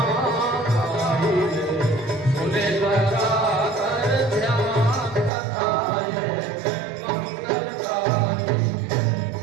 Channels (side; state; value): left; drops out; at 5.3 s